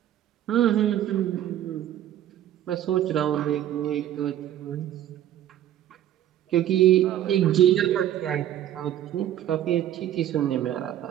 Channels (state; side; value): quieter; left; 11.7 dB